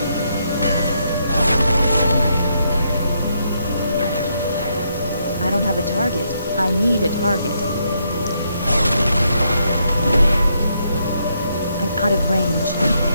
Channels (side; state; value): both; inverted; correlation -0.76